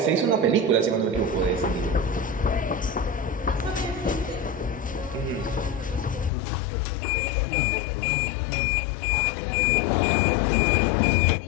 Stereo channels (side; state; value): right; drops out; at 6.3 s